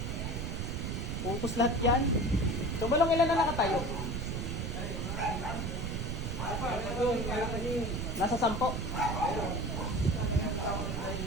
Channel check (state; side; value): noise; right; rumble, 2 dB below the sound